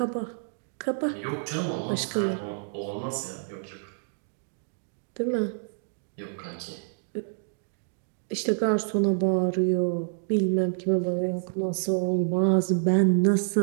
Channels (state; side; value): silent; left; digital silence